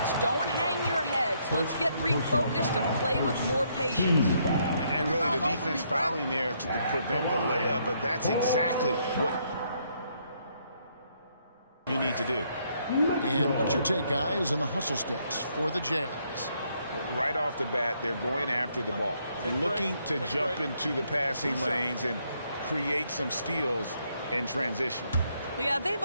Don't hang your heads. Let's get refocused and play with more patience. And really the defense fouling there to prevent the layup, but that's exactly what you need to do. And what's your take, guys, on the hustle sticks for the Jazz? Right off the bat, they're going after the ball. They're looking to jump into the passing lanes and create some steals in transition. Yeah, they've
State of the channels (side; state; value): both; inverted; correlation -0.72